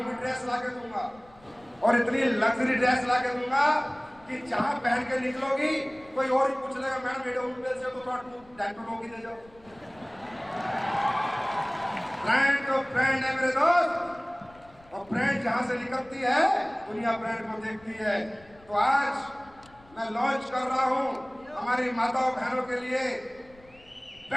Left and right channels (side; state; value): left; noise; rumble, 27 dB below the sound